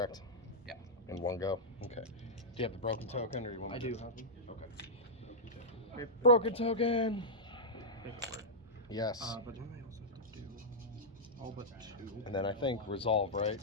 Yeah. In one go. Okay. Do you have the broken token, or you want? I do have them. Okay. Broken token. Paperwork. Yes. But then I also have to do all but 2. And then I think resolve, right?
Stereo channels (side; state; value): both; normal; correlation -0.09